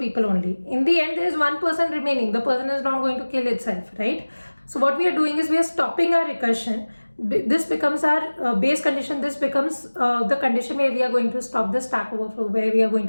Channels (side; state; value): both; inverted; correlation -1.00